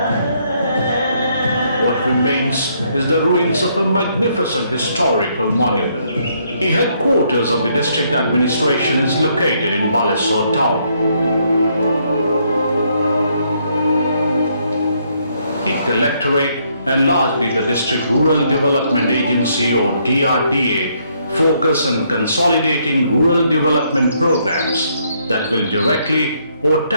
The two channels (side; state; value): both; inverted; correlation -0.71